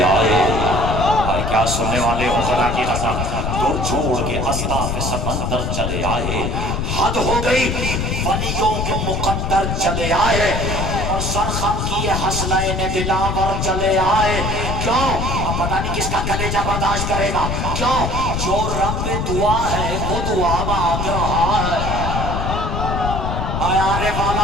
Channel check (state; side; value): noise; left; rumble, 1 dB below the sound